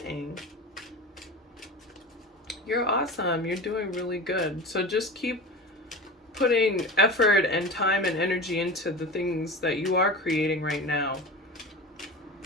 You're awesome. You're doing really good. So just keep putting effort and time and energy into the things that you are creating right now.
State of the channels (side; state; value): both; normal; correlation 0.31